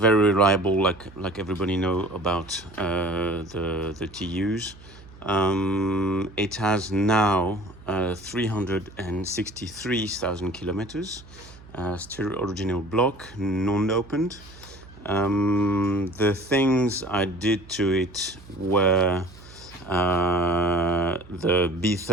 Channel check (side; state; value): right; noise; hum, 20 dB below the sound